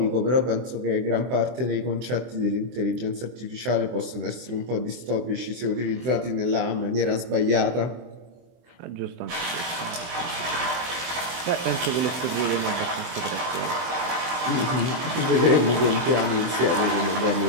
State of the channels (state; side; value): late; left; 23 ms